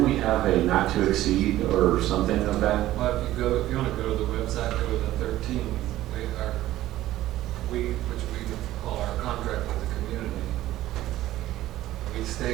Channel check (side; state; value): left; quieter; 14.8 dB